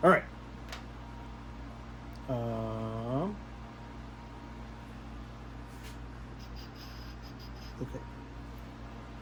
All right. Okay.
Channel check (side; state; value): both; identical; correlation 1.00